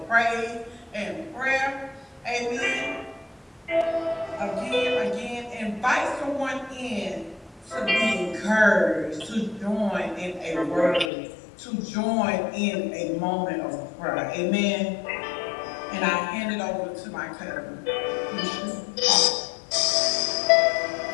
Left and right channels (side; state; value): right; drops out; at 11.1 s